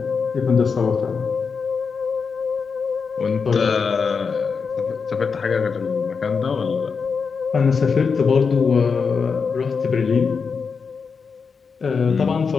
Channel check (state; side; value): quieter; right; 5.5 dB